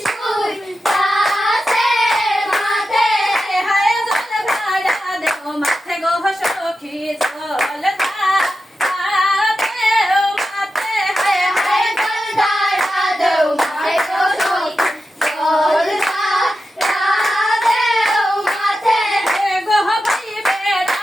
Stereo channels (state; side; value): normal; both; correlation 0.91